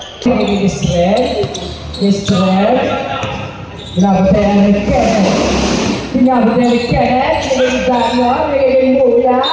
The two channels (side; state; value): both; identical; correlation 1.00